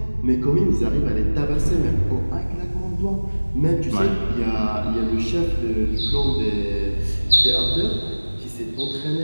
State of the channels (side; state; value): both; inverted; correlation -1.00